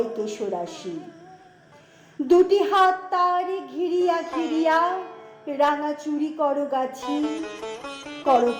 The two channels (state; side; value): identical; both; correlation 1.00